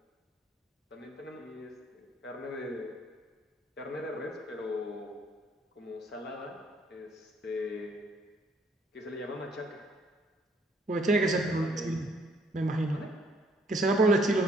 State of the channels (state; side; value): normal; both; correlation 0.65